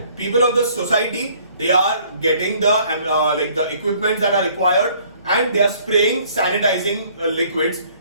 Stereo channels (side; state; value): both; inverted; correlation -0.59